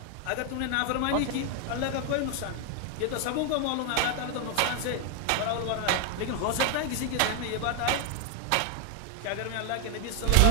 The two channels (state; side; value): different; both; correlation 0.00